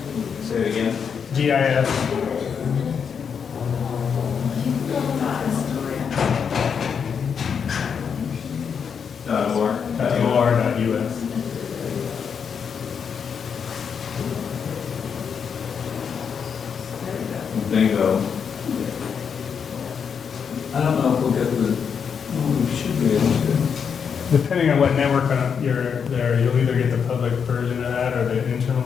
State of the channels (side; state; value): right; quieter; 6.8 dB